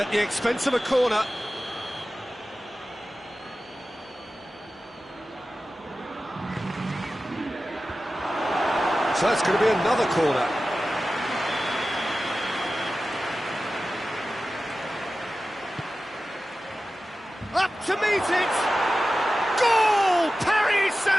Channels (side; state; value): both; normal; correlation 0.95